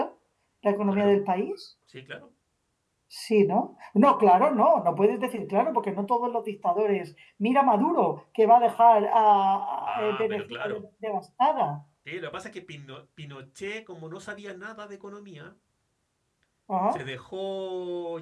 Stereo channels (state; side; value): identical; both; correlation 1.00